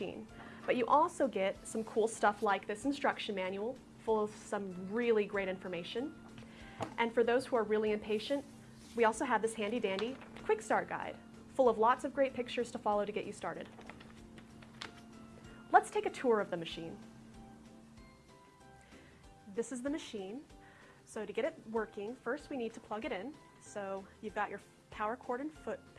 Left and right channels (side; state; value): both; identical; correlation 1.00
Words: but you also get some cool stuff like this instruction manual full of some really great information. And for those who are really impatient, we also have this handy dandy quick start guide full of lots of great pictures to follow to get you started. Let's take a tour of the machine. This is the machine. So to get it working, first we need to plug it in. So you've got your power cord and foot